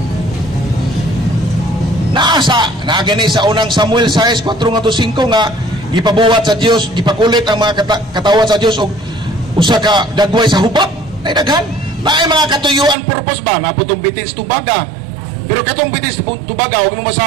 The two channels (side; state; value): left; drops out; at 13.0 s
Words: Naagani sa unang Samuel 6:4-5 nga gipabuhat sa Dios, gipakulit ang mga katawan sa Dios og usa ka dagway sa hubak. Nay daghan. Naay mga katuyuan purpose ba na putong bitin sa tubaga. Pero katong bitin sa tubaga og